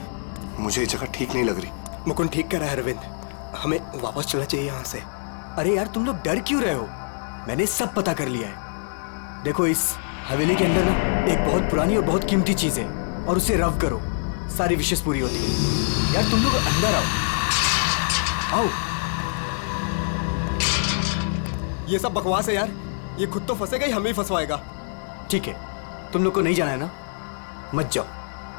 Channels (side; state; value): right; silent; 62 dB below the other